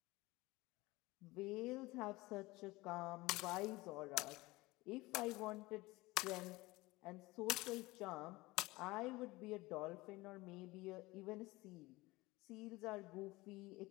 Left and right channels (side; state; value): right; quieter; 20.9 dB